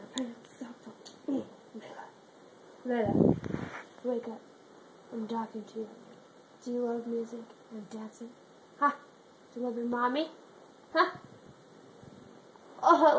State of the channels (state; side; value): identical; both; correlation 1.00